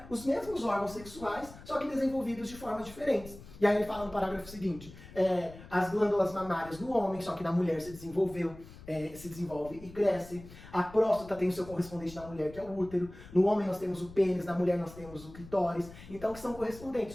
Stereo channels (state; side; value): noise; left; rumble, 17 dB below the sound